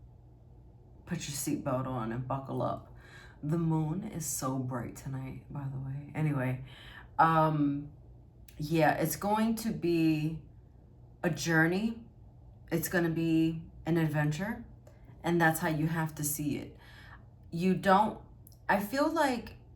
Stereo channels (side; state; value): both; identical; correlation 1.00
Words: put your seatbelt on and buckle up. The moon is so bright tonight, by the way. Anyway, yeah, it's going to be a journey. It's going to be an adventure, and that's how you have to see it. I feel like